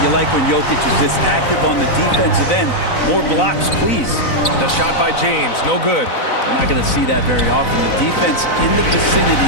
you like when Jokic is this active on the defensive end. More blocks, please. The shot by James, no good. We're not going to see that very often. The defense in the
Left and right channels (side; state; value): right; late; 4.0 ms